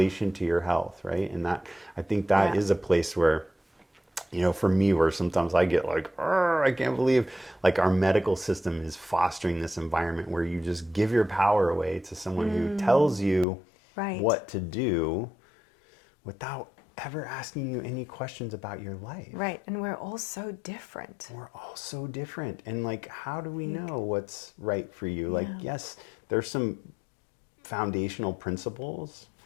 to your health, right? And that, I think that is a place where, for me, where sometimes I get like, I can't believe like our medical system is fostering this environment where you just give your power away to someone who tells you what to do without ever asking you any questions about your life. Right. And we're all so different. We're all so different. And like, how do we know what's right for you? Like, yes, there's some foundational principles,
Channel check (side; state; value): right; drops out; at 13.5 s